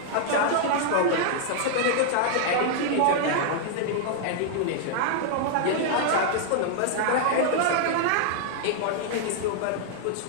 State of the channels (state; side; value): different; both; correlation -0.01